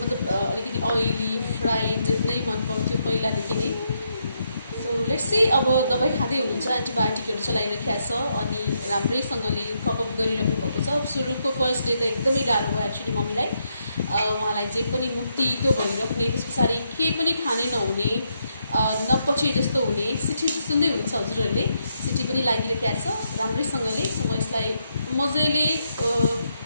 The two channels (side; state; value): both; inverted; correlation -0.79